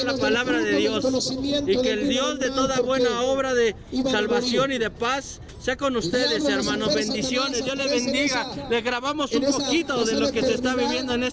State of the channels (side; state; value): both; identical; correlation 1.00